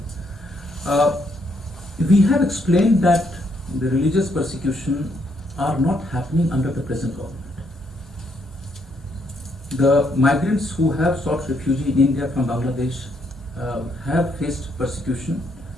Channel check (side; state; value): both; normal; correlation 0.74